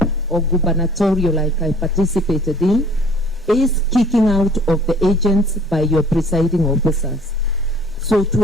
or gubernatorial, like I participated in, is kicking out of the agents by your presiding officers. So to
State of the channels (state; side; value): normal; both; correlation 0.53